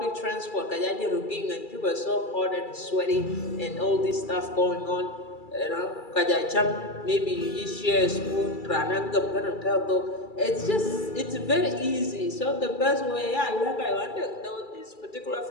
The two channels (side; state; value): right; late; 2.3 ms